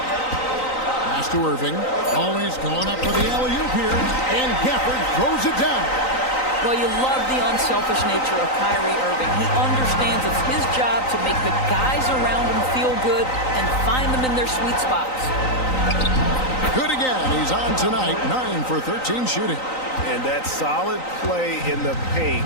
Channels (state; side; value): late; right; 3.9 ms